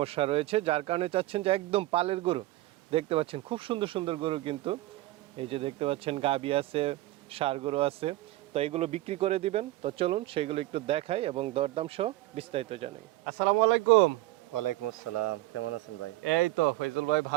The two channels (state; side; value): quieter; left; 17.7 dB